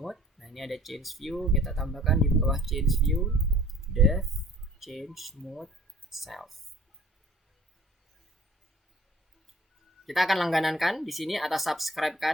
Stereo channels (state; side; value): normal; both; correlation 0.51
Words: Nah, ini ada change view, kita tambahkan di bawah change view dev change mode self. Kita akan langganankan di sini atau subscribe